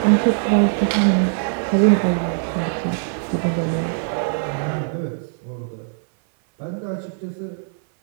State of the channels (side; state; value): left; silent; 58 dB below the other